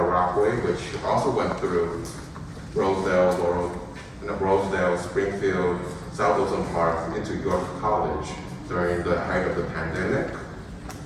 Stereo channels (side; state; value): both; identical; correlation 1.00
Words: Rockaway, which also went through Rosedale, Springfield, South Wilson Park into York College during the height of the pandemic